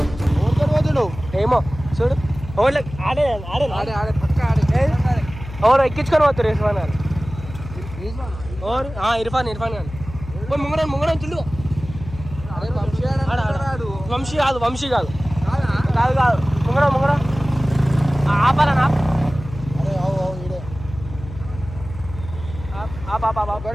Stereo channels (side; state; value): left; noise; hum, 12 dB below the sound